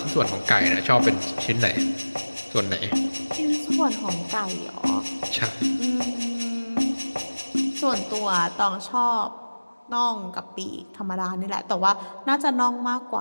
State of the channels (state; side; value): inverted; both; correlation -1.00